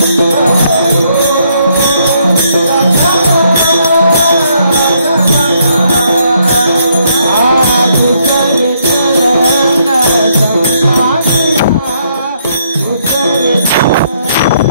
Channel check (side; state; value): both; inverted; correlation -0.72